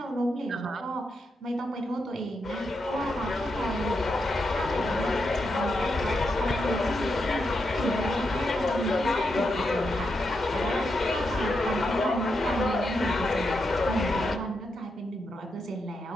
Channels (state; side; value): normal; both; correlation 0.84